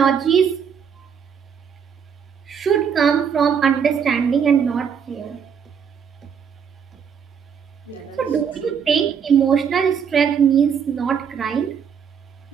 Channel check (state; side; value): quieter; left; 7.2 dB